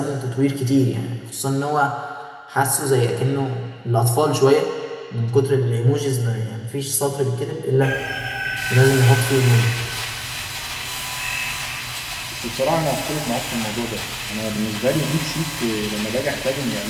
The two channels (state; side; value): identical; both; correlation 1.00